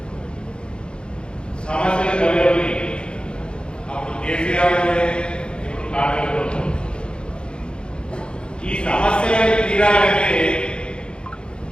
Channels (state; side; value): late; right; 0.053 ms